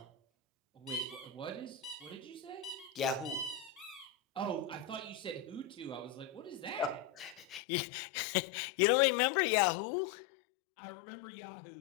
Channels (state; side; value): drops out; right; at 7.6 s